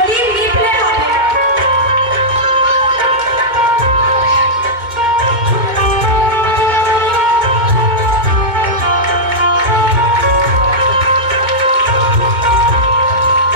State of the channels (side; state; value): left; late; 2.2 ms